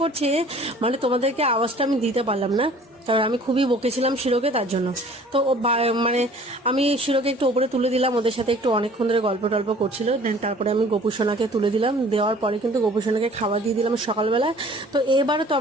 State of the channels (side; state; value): both; normal; correlation 0.51